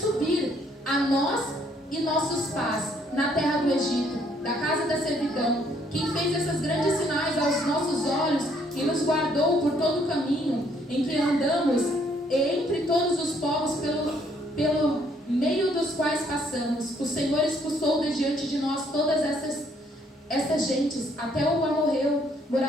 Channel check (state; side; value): normal; both; correlation 0.67